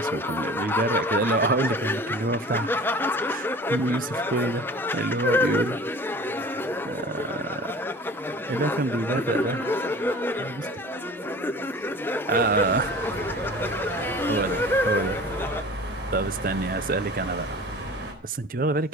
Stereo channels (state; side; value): normal; both; correlation 0.42